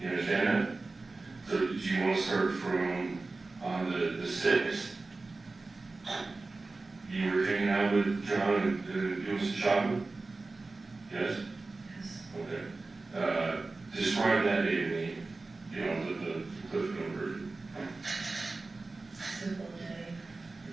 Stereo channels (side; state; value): left; quieter; 3.5 dB